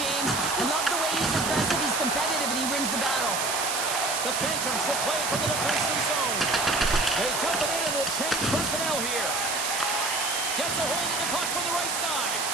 I love the way he's aggressive, he's competitive, and he wins the battle. The Phantoms will play from the defensive zone. They dump it in and will change personnel here. Gets a hold of the puck from the right side.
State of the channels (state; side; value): noise; right; hiss, 1 dB below the sound